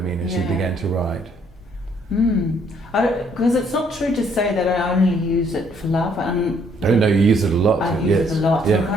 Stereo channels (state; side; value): normal; both; correlation 0.66